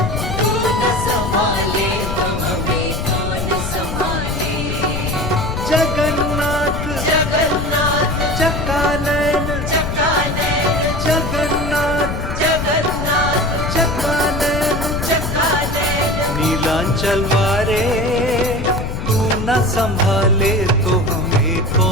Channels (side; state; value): left; noise; rumble, 4 dB below the sound